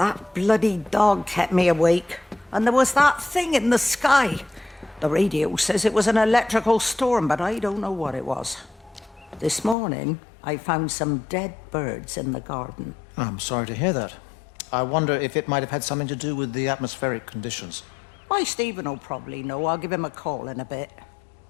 bloody dog kept me awake. And there was that thing in the sky. The radio says it was an electrical storm, but I don't know what it was. This morning, I found some dead birds in the garden. I'm sorry to hear that. I wonder if it might have had something to do with the atmospheric conditions. Why, Stephen will probably know. I'll give him a call in a bit.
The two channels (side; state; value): right; drops out; at 9.8 s